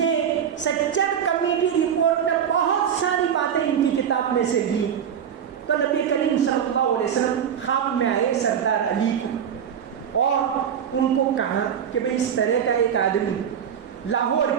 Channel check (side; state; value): left; quieter; 8.5 dB